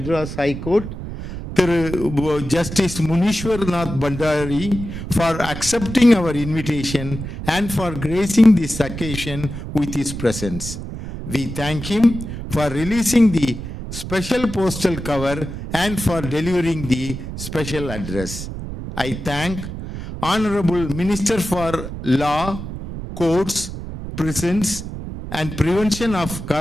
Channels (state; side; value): noise; right; rumble, 8 dB below the sound